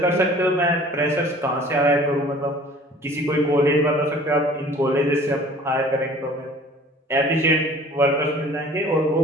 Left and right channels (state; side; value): normal; both; correlation 0.48